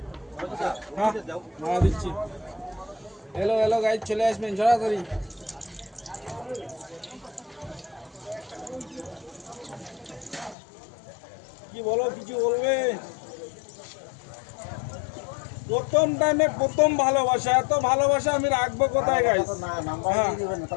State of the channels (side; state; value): right; drops out; at 10.6 s